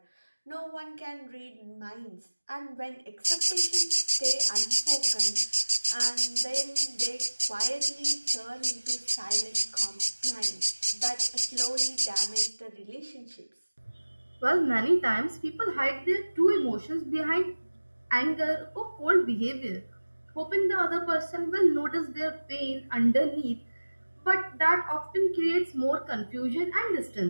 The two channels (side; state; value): both; inverted; correlation -1.00